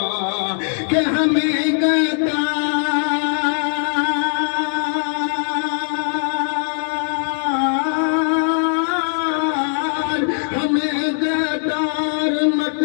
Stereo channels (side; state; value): right; silent; 66 dB below the other